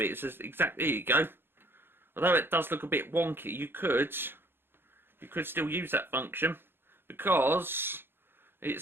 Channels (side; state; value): left; late; 0.10 ms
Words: is exactly, there you go. Although it does look a bit wonky, you could still use that function, because it's